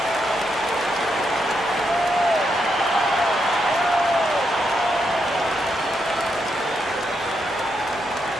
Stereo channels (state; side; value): normal; both; correlation 0.81